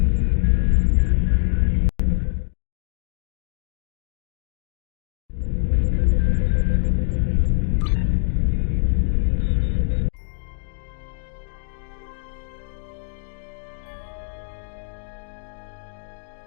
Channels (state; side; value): silent; right; digital silence